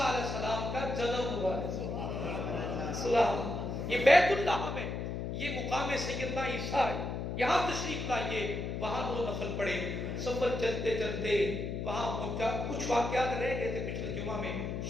علیہ السلام کا جنم ہوا ہے۔ سبحان اللہ، یہ بیت اللحم ہے، یہ مقام سیدنا عیسیٰ ہے، یہاں تشریف لائیے، وہاں دو نفل پڑھے۔ سفر چلتے چلتے وہاں پہنچا، کچھ واقعات رہ گئے تھے پچھلے جمعہ میں،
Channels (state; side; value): noise; left; hum, 3 dB below the sound